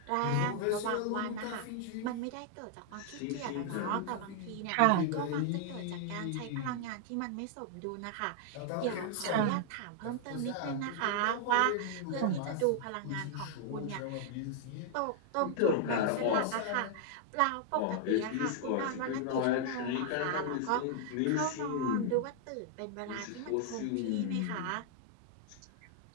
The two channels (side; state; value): both; different; correlation -0.01